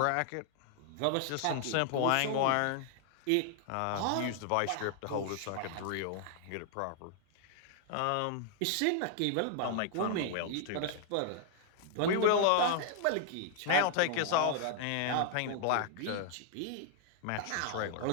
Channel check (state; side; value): different; both; correlation 0.00